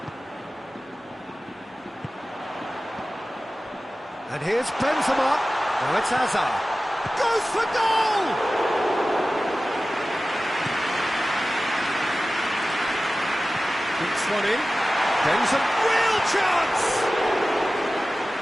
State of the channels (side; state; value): both; normal; correlation 0.96